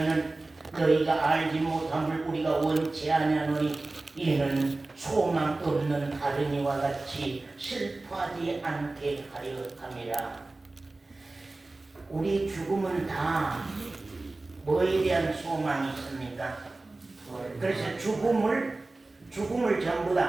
너희가 알지 못함을 우리가 원치 아니하노니 이는 소망 없는 다른이와 같이 슬퍼하지 않게 하려 함이라. 우리 죽음은 다 뭐에 대한 소망이 있습니까? 그래서 죽음을 전부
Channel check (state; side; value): quieter; left; 3.1 dB